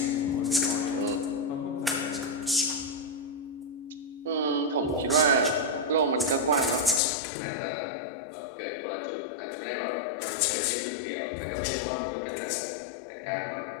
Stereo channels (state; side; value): drops out; right; at 7.0 s